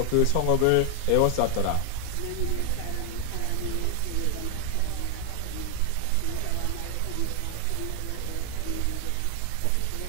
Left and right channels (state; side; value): different; both; correlation 0.00